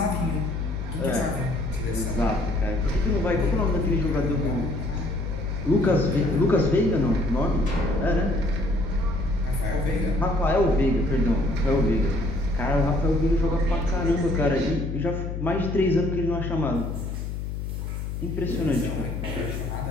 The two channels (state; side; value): noise; left; hum, 5 dB below the sound